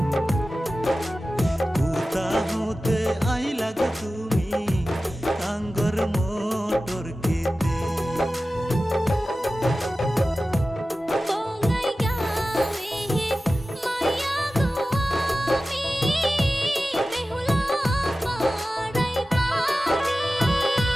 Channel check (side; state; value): both; normal; correlation 0.95